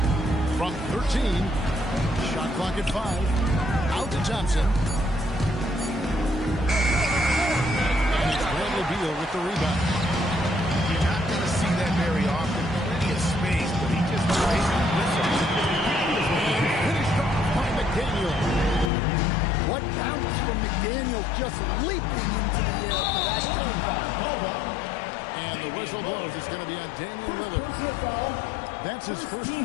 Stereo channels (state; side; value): drops out; right; at 18.9 s